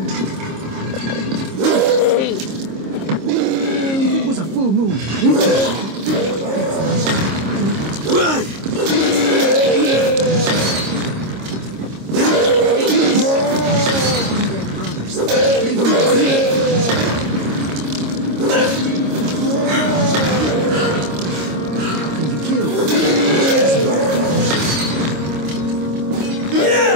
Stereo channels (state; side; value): late; left; 26 ms